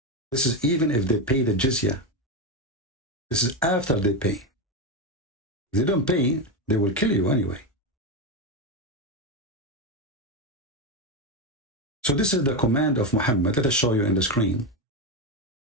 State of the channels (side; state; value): both; normal; correlation 0.12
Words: This is even if they pay the jizya. This is after they pay. If they don't pay, they will kill you anyway. So this is the command of Muhammad. Let us show you in the screen.